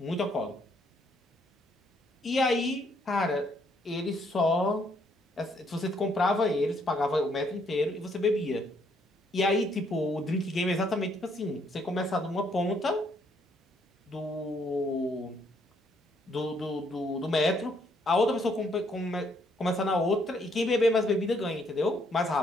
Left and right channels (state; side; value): normal; both; correlation 0.70